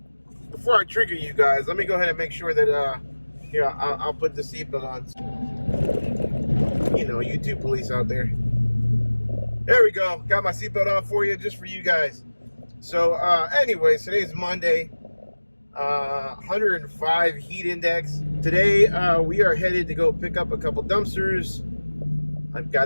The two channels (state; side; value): inverted; both; correlation -1.00